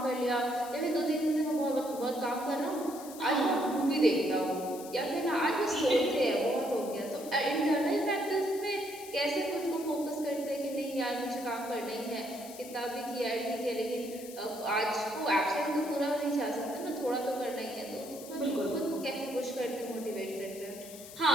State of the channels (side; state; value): left; noise; hiss, 15 dB below the sound